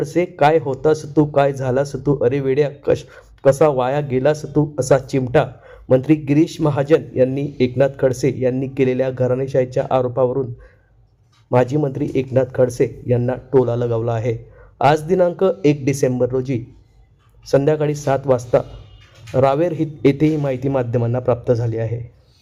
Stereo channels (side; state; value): both; identical; correlation 1.00